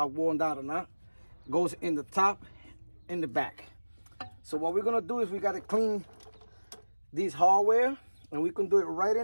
worn down or not. Goes in the top, in the back. So what we're gonna do is we gotta clean these hardware, and we can do it right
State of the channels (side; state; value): both; inverted; correlation -1.00